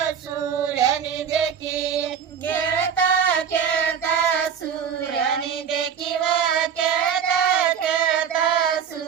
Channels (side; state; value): left; quieter; 7.6 dB